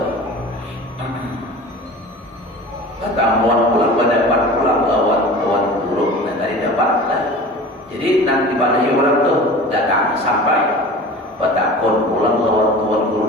Katamuan pulang pulang lawan tuan guru dan tadi dapat lah. Jadi nanti pada orang tuh datang sampai batakon pulang lawan tuan guru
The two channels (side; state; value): both; normal; correlation 0.38